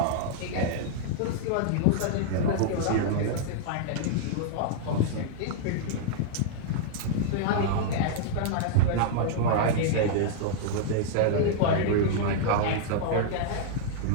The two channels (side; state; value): both; different; correlation -0.01